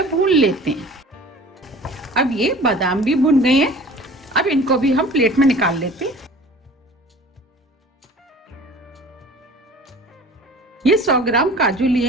भून लेते हैं। अब ये बादाम भी भुन गए हैं। अब इनको भी हम प्लेट में निकाल लेते हैं। ये 100 ग्राम काजू लिए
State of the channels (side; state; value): both; normal; correlation 0.44